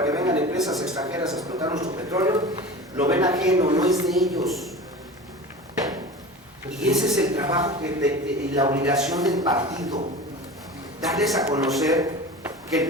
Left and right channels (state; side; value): normal; both; correlation 0.34